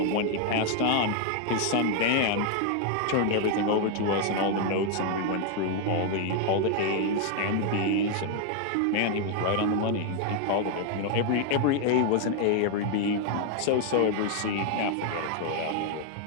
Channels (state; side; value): different; both; correlation 0.00